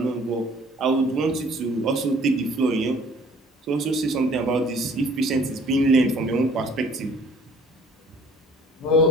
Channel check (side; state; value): both; normal; correlation 0.54